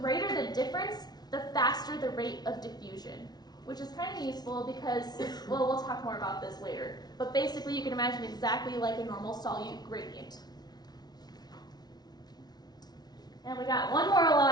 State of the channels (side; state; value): right; late; 0.19 ms